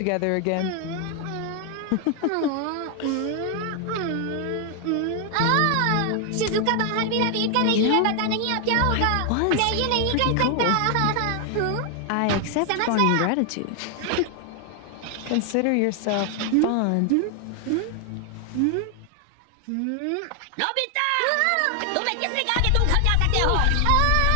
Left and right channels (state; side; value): different; both; correlation 0.00